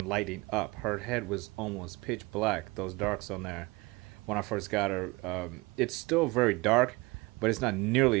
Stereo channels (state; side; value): quieter; left; 23.9 dB